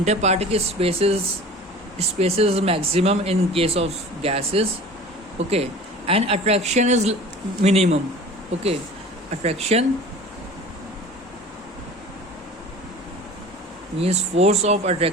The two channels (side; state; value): both; normal; correlation 0.40